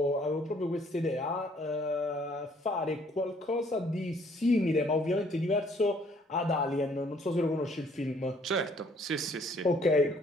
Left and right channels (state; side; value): normal; both; correlation 0.62